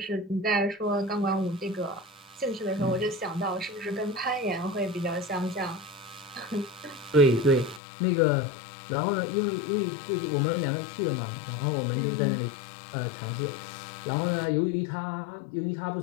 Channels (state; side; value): drops out; right; at 7.8 s